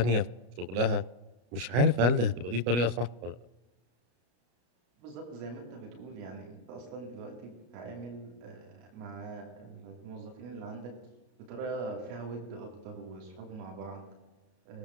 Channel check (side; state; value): left; late; 33 ms